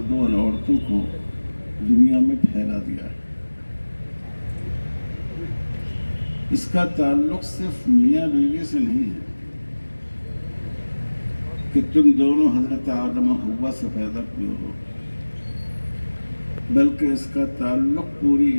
اور عورتوں کو دنیا میں پھیلا دیا ہے۔ اس کا تعلق صرف میاں بیوی سے نہیں ہے کہ تم دونوں حضرت آدم و حوا سے پیدا ہوئے ہو، بلکہ اس کا تعلق پوری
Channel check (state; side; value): inverted; both; correlation -1.00